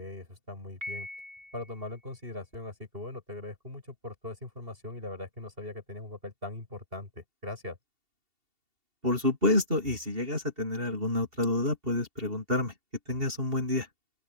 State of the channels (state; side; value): late; left; 2.7 ms